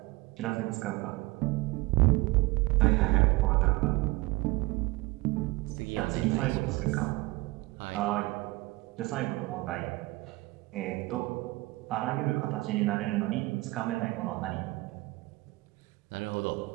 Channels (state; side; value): quieter; left; 22.1 dB